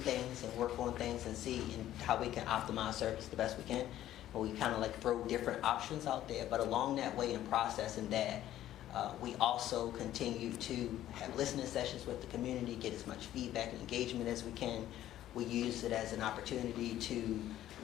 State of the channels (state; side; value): quieter; right; 12.9 dB